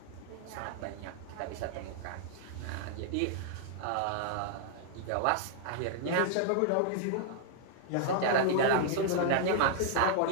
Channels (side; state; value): both; different; correlation 0.00